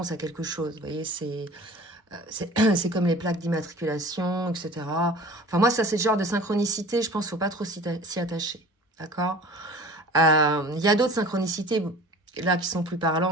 à quelque chose. Vous voyez, c'est comme les plaques d'immatriculation, etc. Enfin, moi, ça, c'est le genre de synchronicité, je pense qu'il ne faut pas trop s'y attacher. D'accord? Il y a d'autres synchronicités, là, qui sont plus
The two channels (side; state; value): both; normal; correlation 0.43